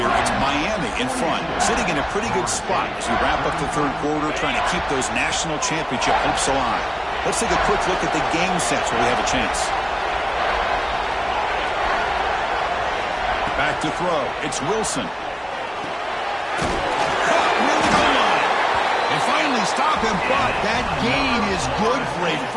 it's Miami in front, sitting in a pretty good spot as we wrap up the third quarter, trying to keep those national championship hopes alive. Let's take a quick look at the game sets where we have a chance. Back to throw. It's Wilson. Caught near the goal line. And finally stop him, but that gain is good for a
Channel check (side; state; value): both; identical; correlation 1.00